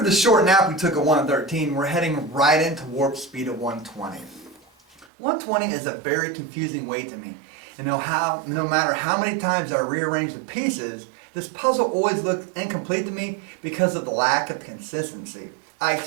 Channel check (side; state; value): left; drops out; at 5.1 s